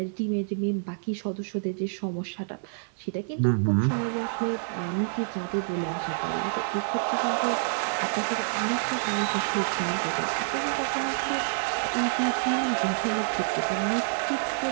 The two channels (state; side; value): silent; left; digital silence